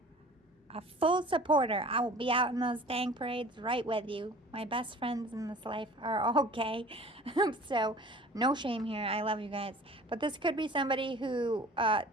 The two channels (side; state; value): both; normal; correlation 0.45